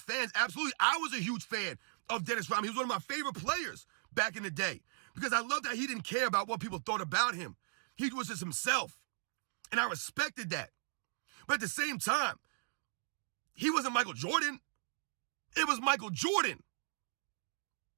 Absolutely. I was a huge fan of Dennis Rodman. He was one of my favorite players back in the day because I loved that he didn't care about what people thought about him. He was just himself, and I respected that. But at the same time, he wasn't Michael Jordan. It was Michael Jordan.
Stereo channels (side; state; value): left; silent; digital silence